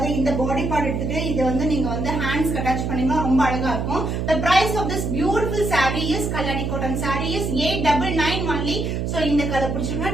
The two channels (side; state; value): right; noise; hum, 2 dB below the sound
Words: இந்த பாடி பார்ட் எடுத்துட்டு இதை வந்து நீங்க வந்து ஹேண்ட்ஸ்க்கு அட்டாச் பண்ணீங்கன்னா ரொம்ப அழகா இருக்கும். the price of this beautiful saree is Kalyani cotton saree is 899 only. So இந்த கலர்